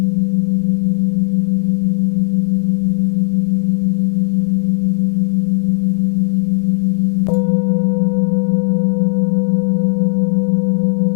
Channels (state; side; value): silent; right; 64 dB below the other